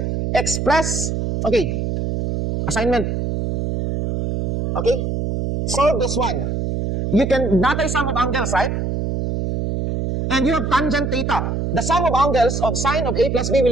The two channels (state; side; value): noise; right; hum, 2 dB below the sound